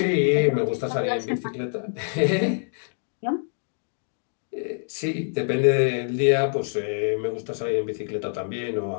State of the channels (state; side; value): silent; right; digital silence